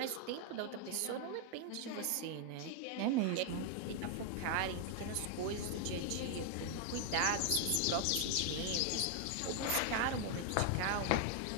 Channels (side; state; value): both; different; correlation 0.00